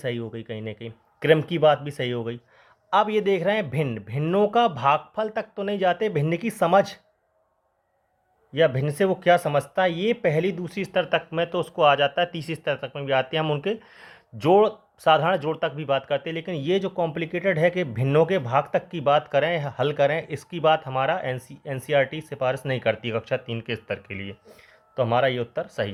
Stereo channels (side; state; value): both; identical; correlation 1.00